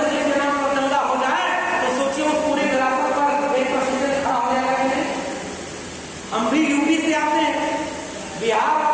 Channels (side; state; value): both; identical; correlation 1.00